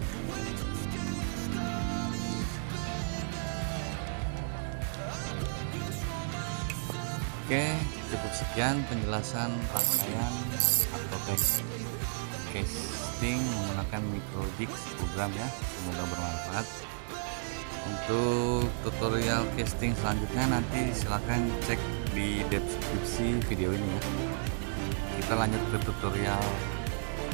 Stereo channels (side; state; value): left; silent; digital silence